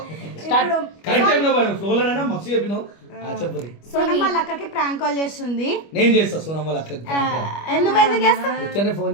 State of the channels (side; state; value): right; late; 25 ms